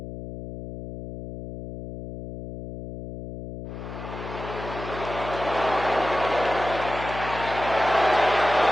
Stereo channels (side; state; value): left; noise; hum, 10 dB below the sound